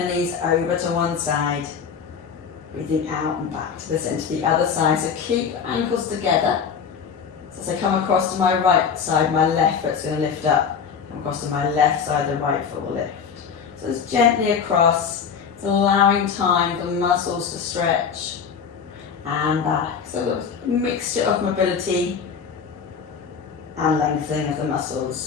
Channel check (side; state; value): right; quieter; 6.6 dB